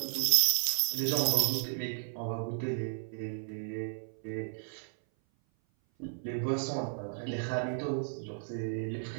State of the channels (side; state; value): left; silent; 55 dB below the other